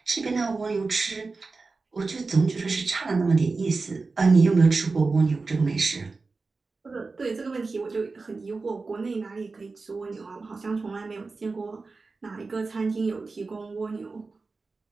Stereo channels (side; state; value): left; quieter; 4.0 dB